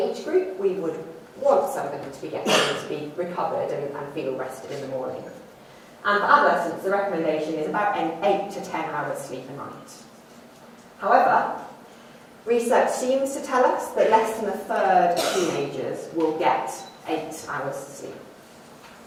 group, we would want somebody to be getting to be recovered and feel rested in the morning. And for adolescents, the recommendation is about 8 to 10 hours sleep a night. However, research seems to tell us that less than a third of teenagers will get 8 hours sleep.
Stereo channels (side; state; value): both; identical; correlation 1.00